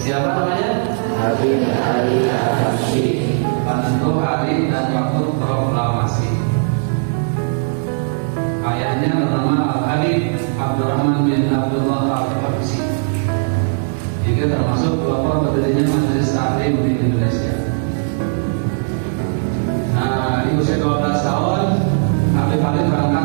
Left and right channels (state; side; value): silent; left; digital silence